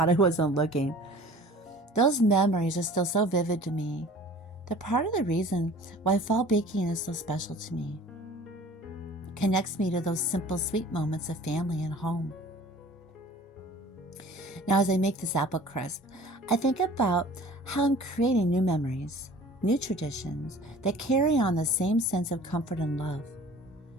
I wasn't looking. Those memories are still so vivid to me. They're part of the reason why fall baking is so special to me. It connects me to those simple, sweet moments of family and home. Now, as I make this apple crisp, I think about how I'm creating new memories, new traditions that carry on the same sense of comfort and love.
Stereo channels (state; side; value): normal; both; correlation 0.46